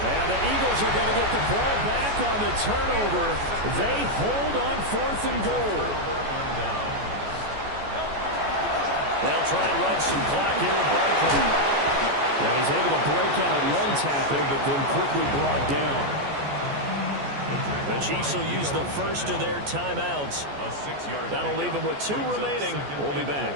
And the Eagles are going to get the ball back on the turnover. They hold on 4th and goal. They'll try and run some clock here with Barkley. And he's able to break out of one tackle, but then quickly brought down. The Chiefs will use the first of their timeouts. That'll leave them with 2 remaining. We'll be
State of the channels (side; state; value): left; late; 14 ms